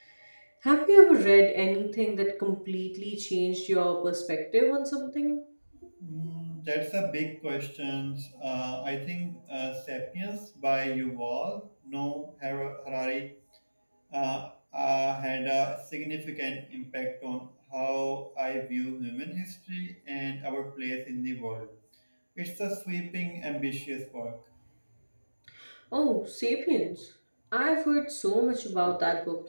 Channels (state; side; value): inverted; both; correlation -1.00